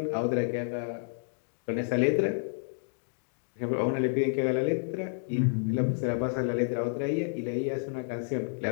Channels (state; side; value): silent; right; digital silence